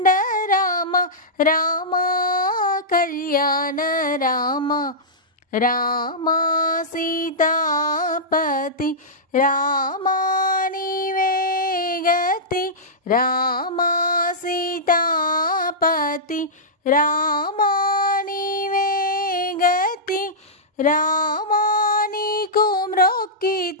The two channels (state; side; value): normal; both; correlation -0.13